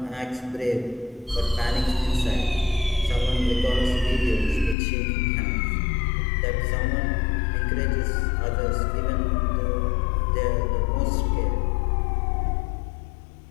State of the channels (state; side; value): drops out; right; at 4.8 s